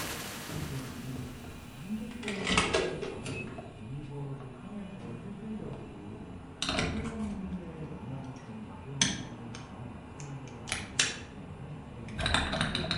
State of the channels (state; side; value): identical; both; correlation 1.00